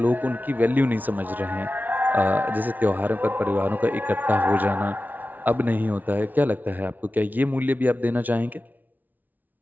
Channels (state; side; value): late; left; 0.081 ms